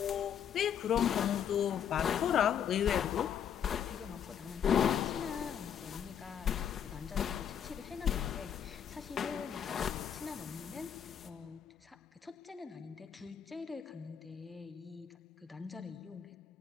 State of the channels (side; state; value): right; quieter; 8.6 dB